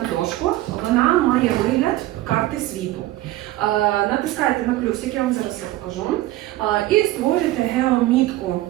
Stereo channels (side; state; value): left; quieter; 16.3 dB